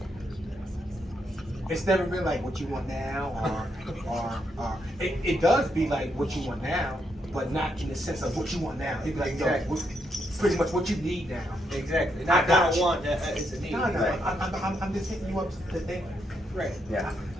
It's never been like what you want now, or it does be like what you want now, but not in the sense of what you want now. It'd be like, Exactly. pretty much what you need now. Exactly. I Not got don't you. want that. It's a need. No, Right. I'm just hitting you up to think. Right. Yeah.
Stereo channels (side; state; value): both; normal; correlation 0.79